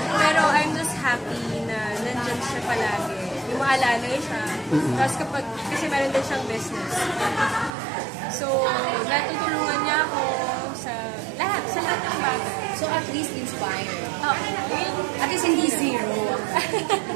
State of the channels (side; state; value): left; drops out; at 7.7 s